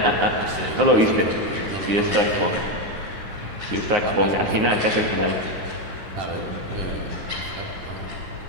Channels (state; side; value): late; left; 10 ms